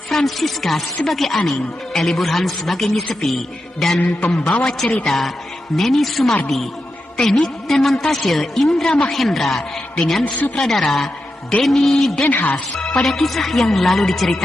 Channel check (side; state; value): both; normal; correlation 0.88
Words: Francisca sebagai Aning, Eli Burhan sebagai Nyisepi, dan pembawa cerita Neni Sumardi. Teknik dan montase Indra Mahendra dengan sutradara Denny Denhas. Pada kisah yang lalu